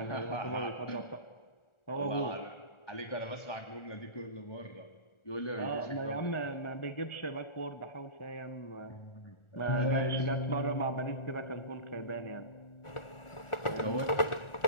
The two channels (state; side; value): late; right; 1.4 ms